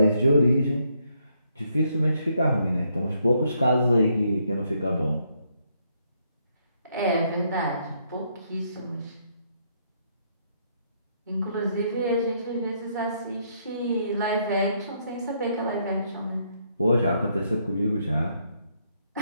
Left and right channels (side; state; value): both; inverted; correlation -0.73